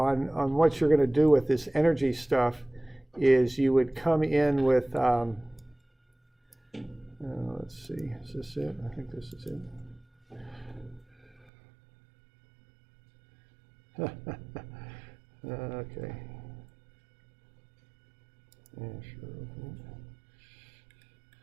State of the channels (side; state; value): left; drops out; at 11.5 s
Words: what you're going to do with this energy stuff is you would come in with, let's see, is this it? I think this is it. Okay. Yeah, sure.